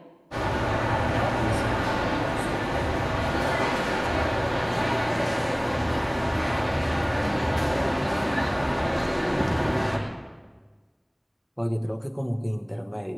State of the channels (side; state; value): both; identical; correlation 1.00